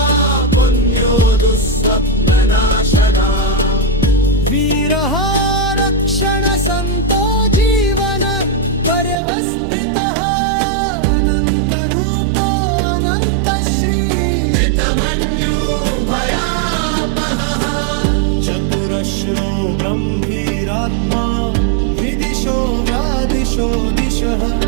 पुण्यो दुःस्वप्ननाशना वीरः रक्षणसन्तो जीवन पर्यवस्थितः अनन्तरूपो अनन्तश्री जितमन्यो भयापहः चतुरश्रो गम्भीरात्मा विदिशो व्यादिशो दिशः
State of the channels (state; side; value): drops out; left; at 9.2 s